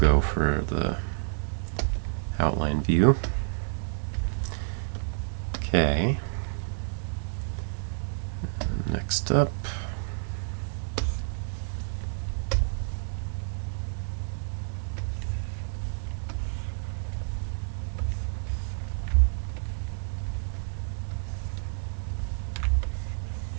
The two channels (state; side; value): silent; left; digital silence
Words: for the outline view. Okay. Next up.